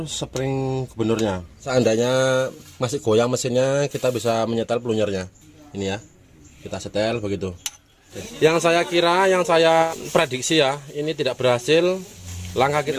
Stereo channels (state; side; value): identical; both; correlation 1.00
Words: spring gubernurnya. Seandainya masih goyang mesinnya, kita bisa menyetel pelunyernya. Ini ya, kita setel begitu. Yang saya kira, yang saya prediksi ya, ini tidak berhasil. Langkah